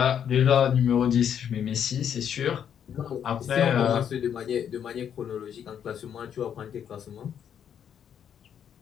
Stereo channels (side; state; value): right; quieter; 8.7 dB